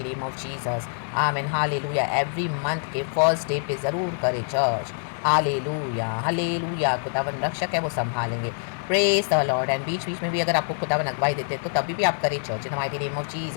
name of Jesus. आमीन। हालेलुया। एवरी मंथ के फर्स्ट डे पे ज़रूर करें चर्च। Hallelujah hallelujah. खुदावन रक्षक है, वो संभालेंगे। Praise the lord. एंड बीच बीच में भी अगर आपको खुदावन अगवाई देते हैं तो तभी भी आप करें church in the mighty name of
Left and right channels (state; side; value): silent; right; digital silence